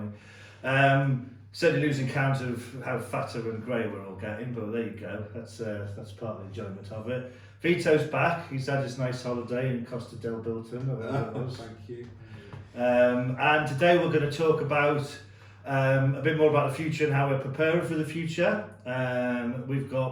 we? Certainly losing count of how fatter and grey we're all getting, but there you go. That's part of the enjoyment of it. Vitto's back. He's had his nice holiday in Costa del Bilton. Thank you. And today we're going to talk about a bit more about the future and how we're preparing for the future. We've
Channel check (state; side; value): identical; both; correlation 1.00